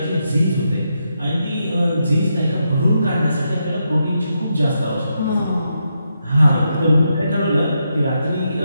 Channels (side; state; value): both; inverted; correlation -0.83